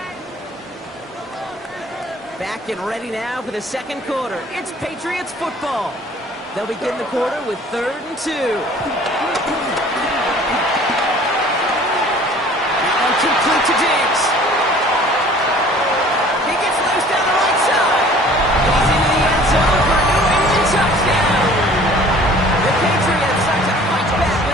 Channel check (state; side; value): normal; both; correlation 0.50